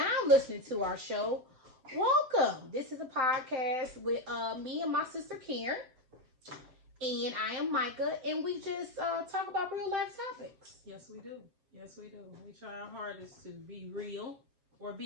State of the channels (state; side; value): late; left; 7.6 ms